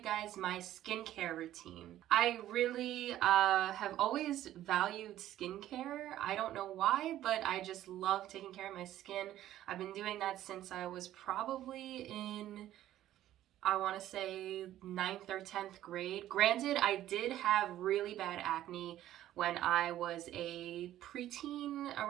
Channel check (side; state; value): left; quieter; 13.1 dB